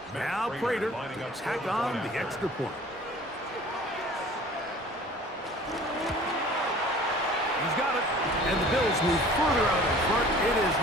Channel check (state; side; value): normal; both; correlation 0.47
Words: Now Prater to tack on the extra point. He's got it, and the Bills move further out in front. It is